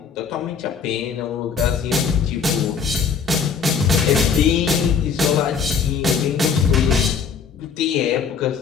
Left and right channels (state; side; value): quieter; right; 6.2 dB